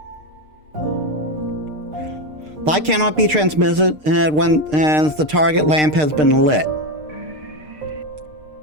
Light cannot be transmitted when the target lamp has been lit.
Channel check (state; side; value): late; left; 6.6 ms